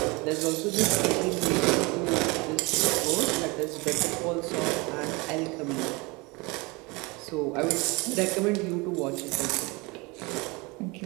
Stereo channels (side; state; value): left; quieter; 26.0 dB